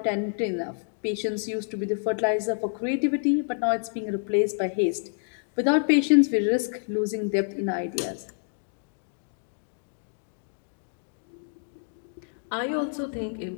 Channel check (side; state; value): right; silent; 59 dB below the other